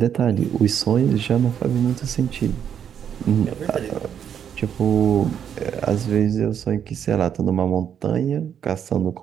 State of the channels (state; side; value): quieter; left; 8.6 dB